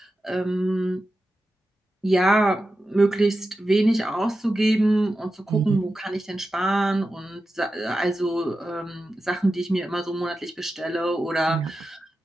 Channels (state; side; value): normal; both; correlation 0.92